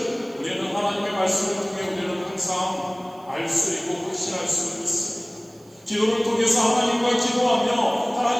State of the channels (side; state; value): right; noise; hiss, 30 dB below the sound